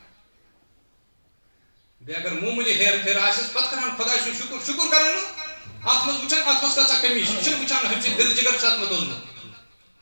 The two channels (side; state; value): both; inverted; correlation -1.00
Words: بیٚیہِ اگر معموٗلی ہیرٕ پھیرٕ آسٮ۪س پتہٕ کران خۄداے سُنٛد شُکر کران نہٕ اتھ منٛز وٕچھان اتھ منٛز کۭژاہ کٔمی چھِ یہِ چھُنہٕ وٕچھان ہُمہِ سٕنٛدۍ دِل جگر چھُ اتھ منٛز دوٚزمُت